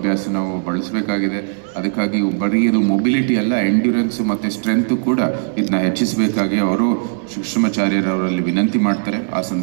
ನಾವು ಬಳಸಬೇಕಾಗಿದೆ. ಅದಕ್ಕಾಗಿ ಬರೀ ಇದು ಮೊಬಿಲಿಟಿ ಅಲ್ಲ, ಎಂಡ್ಯೂರೆನ್ಸ್ ಮತ್ತು ಸ್ಟ್ರೆಂತ್ ಕೂಡ ಇದನ್ನ ಹೆಚ್ಚಿಸಬೇಕಾಗಿ ಅವರು ಕೃಷ್ಣಮಾಚಾರ್ಯರವರಲ್ಲಿ ವಿನಂತಿ ಮಾಡ್ತಾರೆ. ಆ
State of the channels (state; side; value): silent; left; 67 dB below the other